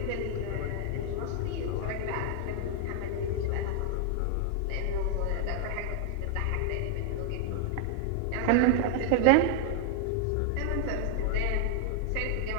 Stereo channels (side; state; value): both; different; correlation 0.00